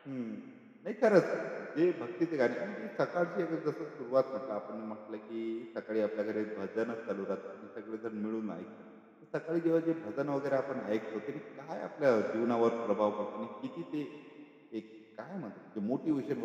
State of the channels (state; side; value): identical; both; correlation 1.00